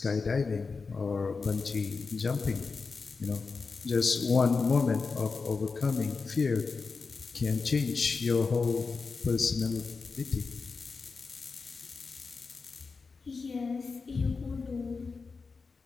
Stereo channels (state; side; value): quieter; right; 4.6 dB